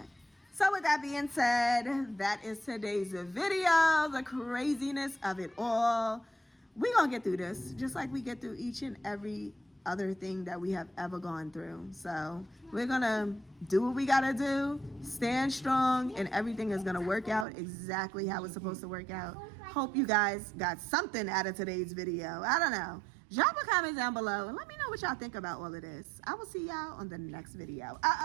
So with that being said, that is today's video. The craziness of it all. We're going to get through this. Just like we get through each and every other thing that we have ever gone through. So we're gonna do what we gotta do, stand strong, and everything is gonna work out exactly how it's supposed to work out. Hope you guys got something out of today's video. I don't know. Drop a comment down below and let me know what y'all think about all of this. I will see y'all on the next video.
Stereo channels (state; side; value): drops out; left; at 17.4 s